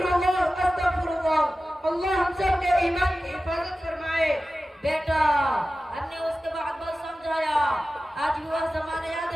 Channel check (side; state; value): both; normal; correlation 0.95